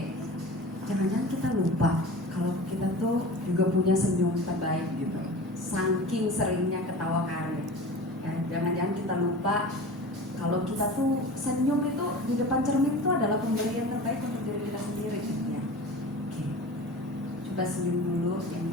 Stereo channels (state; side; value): normal; both; correlation 0.35